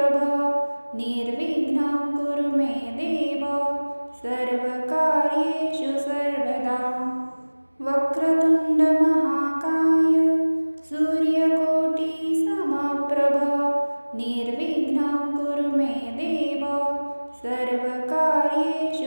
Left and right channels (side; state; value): both; inverted; correlation -1.00